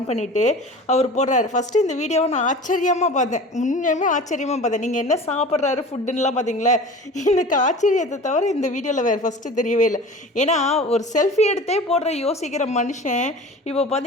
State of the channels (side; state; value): both; normal; correlation 0.38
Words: பண்ணிவிட்டு அவர் போடுறாரு. ஃபஸ்ட்டு இந்த வீடியோவை நான் ஆச்சரியமாக பார்த்தேன், உண்மையுமே ஆச்சரியமாக பார்த்தேன். நீங்கள் என்ன சாப்பிட்றாரு ஃபுட்டுன்னெலாம் பார்த்தீங்களா? எனக்கு ஆச்சரியத்தை தவிர இந்த வீடியோவில் வேறு ஃபஸ்ட்டு தெரியவே இல்லை. ஏன்னா ஒரு செல்ஃபி எடுத்தே போடுற யோசிக்கிற மனுஷன் இப்போ